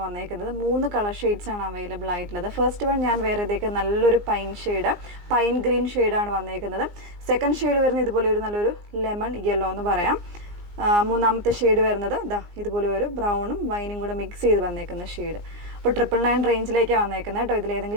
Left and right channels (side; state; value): left; late; 17 ms